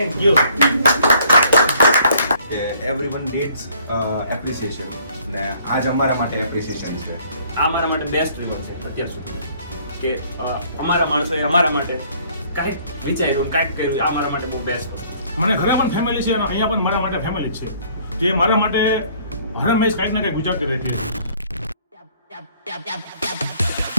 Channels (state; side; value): inverted; both; correlation -0.60